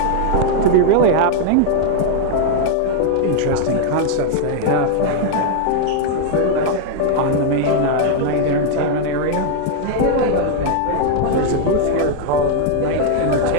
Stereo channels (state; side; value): different; both; correlation 0.00